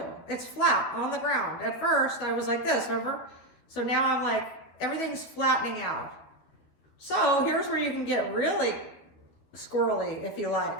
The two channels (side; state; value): right; late; 12 ms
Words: It's flat on the ground. At first I was like this, remember? So now I'm like, everything's flattening out. So here's where you can get really squirrely if you